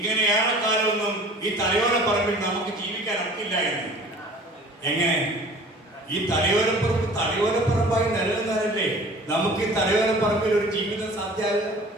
ഏറെക്കാലമൊന്നും ഈ തലയോലപ്പറമ്പിൽ നമുക്ക് ജീവിക്കാൻ ഒക്കില്ല എന്ന്. എങ്ങനെ? ഈ തലയോലപ്പറമ്പായി നിലനിന്നാലല്ലേ നമുക്ക് ഈ തലയോലപ്പറമ്പിൽ ഒരു ജീവിതം സാധ്യമാകുക.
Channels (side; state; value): both; normal; correlation 0.46